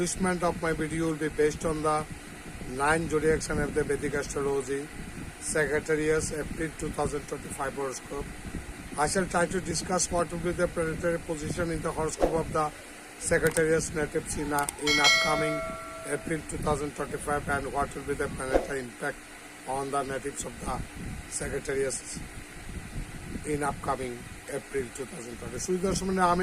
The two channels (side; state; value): both; identical; correlation 1.00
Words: of my video will be based on the 9 zodiac sign of the Vedic astrology, Sagittarius, April 2025 horoscope. I shall try to discuss what will be the planetary position in the horoscope of the Sagittarius natives in upcoming April 2025 and what will be the planetary impact on the natives of the Sagittarius in upcoming April 2020. সুদর্শনে